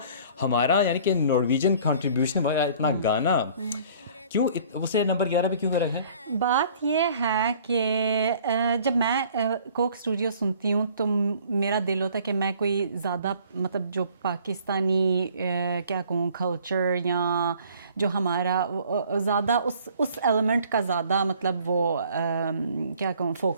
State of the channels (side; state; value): both; inverted; correlation -0.54